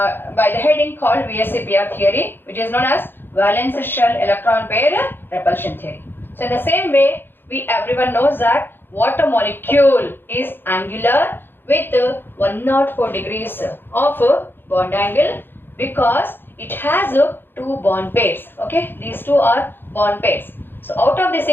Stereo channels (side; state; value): right; late; 0.10 ms